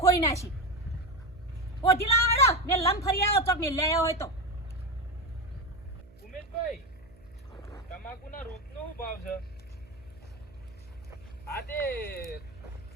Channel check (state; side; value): noise; right; hum, 25 dB below the sound